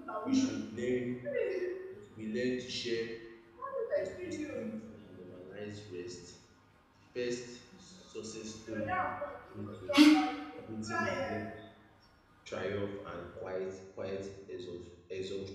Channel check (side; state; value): both; identical; correlation 1.00